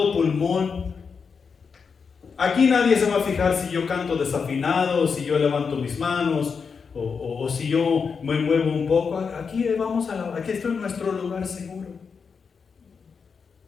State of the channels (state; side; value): quieter; right; 5.7 dB